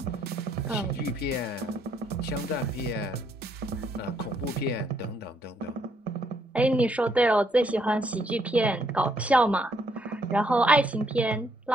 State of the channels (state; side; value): normal; both; correlation 0.72